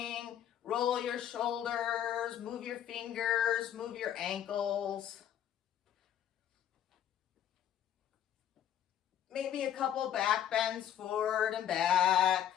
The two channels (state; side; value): quieter; right; 10.5 dB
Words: Roll your shoulders, move your fingers, move your ankles. Maybe a couple back bends forward and back,